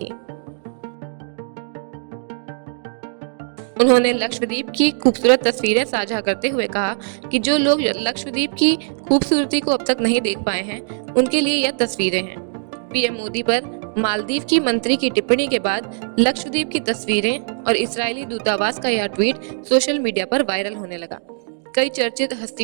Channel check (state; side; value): silent; left; 64 dB below the other